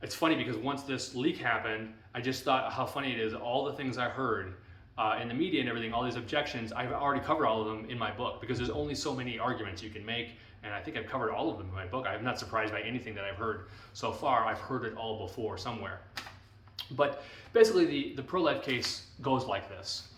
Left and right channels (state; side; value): identical; both; correlation 1.00